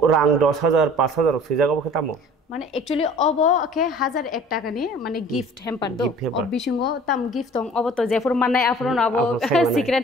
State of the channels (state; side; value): normal; both; correlation 0.48